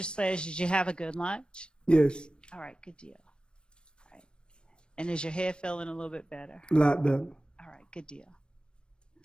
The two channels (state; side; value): late; right; 0.054 ms